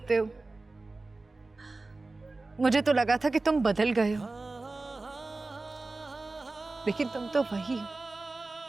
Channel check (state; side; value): quieter; left; 3.3 dB